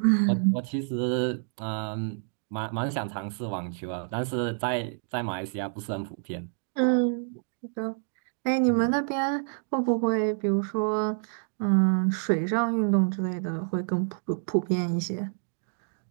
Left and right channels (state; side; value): silent; left; digital silence